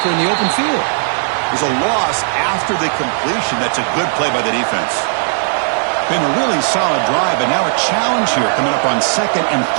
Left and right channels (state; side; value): silent; left; 66 dB below the other